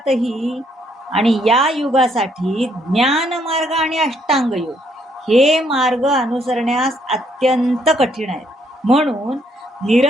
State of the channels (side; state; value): both; normal; correlation 0.70